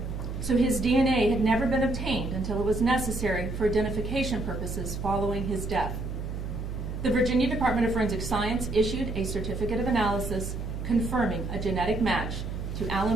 so his DNA had never been obtained until it was necessary for identification purposes following his death. The Virginia Department of Forensic Science issued a certificate of analysis confirming a genetic match to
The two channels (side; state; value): right; noise; hum, 5 dB below the sound